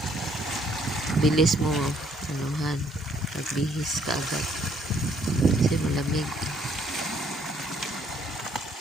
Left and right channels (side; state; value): both; normal; correlation 0.66